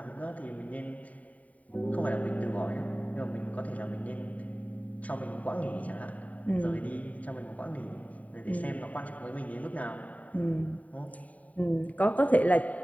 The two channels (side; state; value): right; late; 0.070 ms